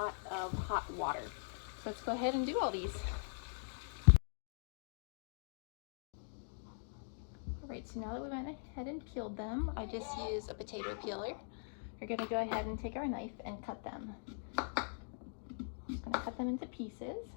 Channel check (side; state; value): right; silent; digital silence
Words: of hot water. So let's go ahead and do all these. Alright, so now that we went ahead and peeled them, I just used a potato peeler. We're going to go ahead and take our knife and cut them. I'm going to cut them into pieces.